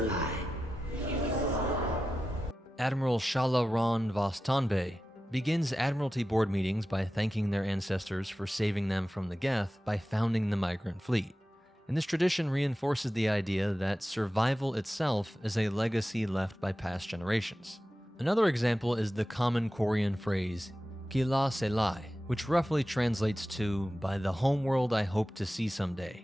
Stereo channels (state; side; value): normal; both; correlation 0.93